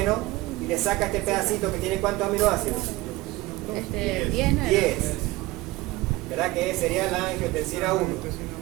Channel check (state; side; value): quieter; left; 19.6 dB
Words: y le saca este pedacito que tiene ¿cuántos aminoácidos? 10, ¿no? 10. ¿Verdad? Que sería la angiotensina 1.